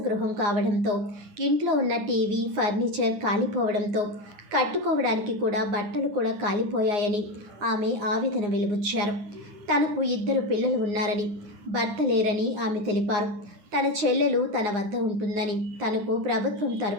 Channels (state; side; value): late; left; 9.6 ms